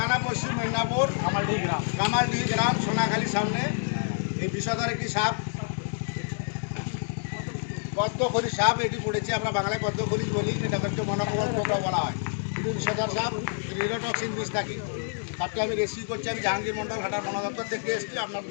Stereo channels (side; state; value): right; silent; digital silence